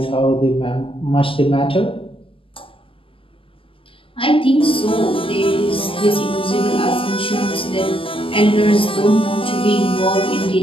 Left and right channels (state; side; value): late; right; 0.26 ms